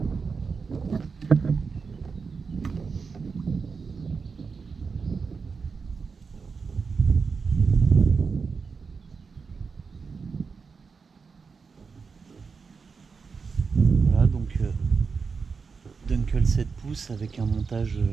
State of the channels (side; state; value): left; quieter; 5.1 dB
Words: Voilà, donc Dunkel 7 pouces avec un montage